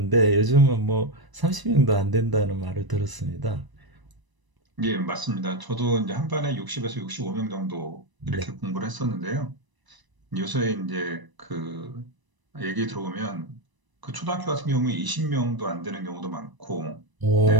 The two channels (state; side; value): late; left; 1.0 ms